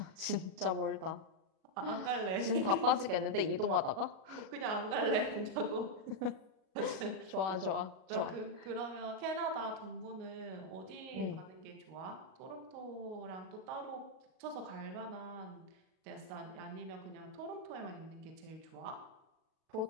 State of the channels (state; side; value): late; left; 37 ms